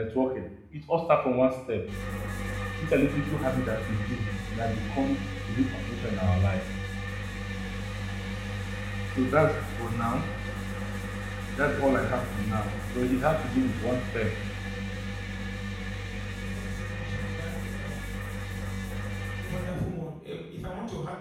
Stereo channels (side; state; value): both; identical; correlation 1.00